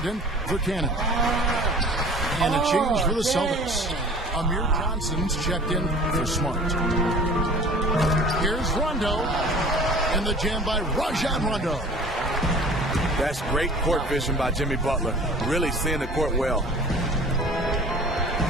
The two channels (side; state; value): both; normal; correlation 0.45